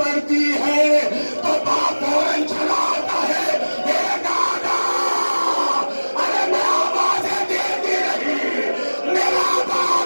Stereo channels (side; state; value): both; inverted; correlation -1.00